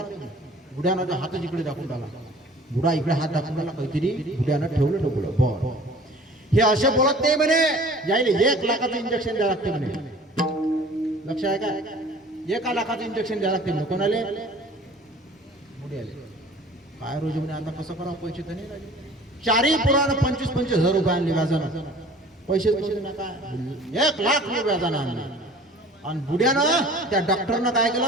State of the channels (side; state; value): both; normal; correlation 0.47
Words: बुड्यानं हातच इकडे दाखवून टाकला, बुडा इकडे हात दाखवून टाकला, काहीतरी बुड्यानं ठेवलं डबुलं. बरं हे असे बोलत नाही म्हणे, यायले 1 लाखाचं इंजेक्शन द्यावं लागते म्हणे. लक्ष आहे का? 1 लाखाचं इंजेक्शन द्यावं लागते म्हणे. कोणाले? बुड्याले. काय रोज म्हणे आता कसं करावं, पैसे तर नाही लागले. 4 पोरानं 25-25 हजार रुपये आणले व्याजानं. पैसेच नव्हते ना काय, 1 लाख रुपये व्याजानं आणले. आणि बुड्यानं त्या डॉक्टरनं काय